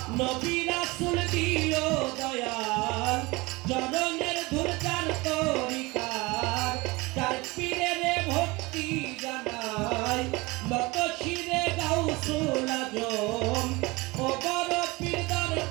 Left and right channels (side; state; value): left; quieter; 23.4 dB